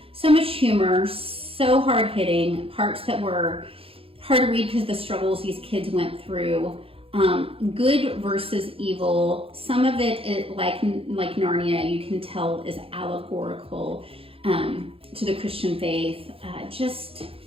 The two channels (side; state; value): left; late; 0.27 ms